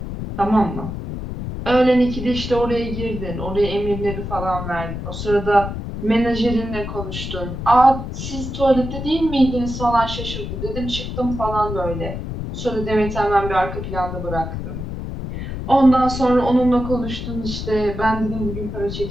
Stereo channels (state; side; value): noise; left; rumble, 6 dB below the sound